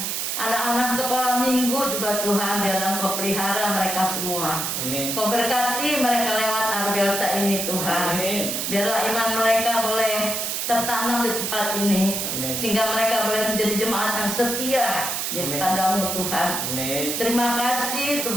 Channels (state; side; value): noise; right; hiss, 1 dB below the sound